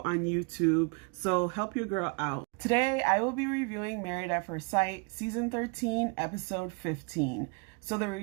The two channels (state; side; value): quieter; left; 33.2 dB